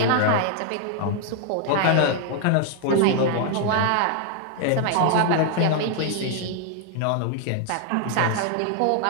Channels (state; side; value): different; both; correlation 0.00